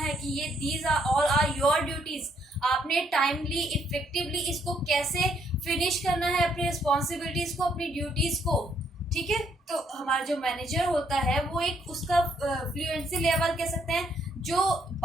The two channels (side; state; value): both; normal; correlation 0.71